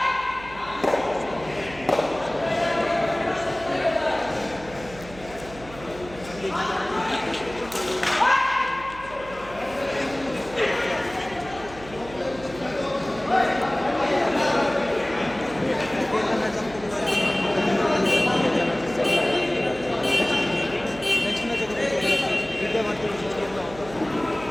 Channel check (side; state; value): right; noise; hum, 17 dB below the sound